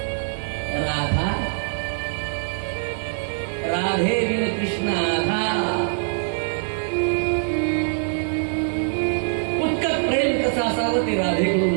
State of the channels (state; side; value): silent; left; 56 dB below the other